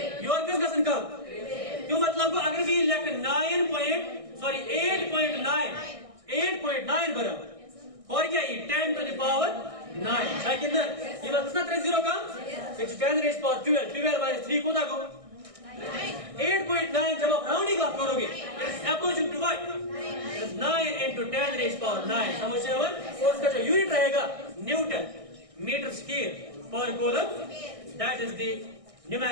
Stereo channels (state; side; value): late; left; 1.6 ms